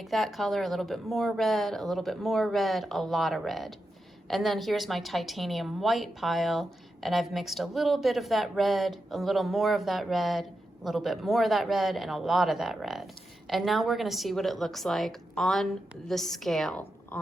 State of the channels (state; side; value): normal; both; correlation 0.88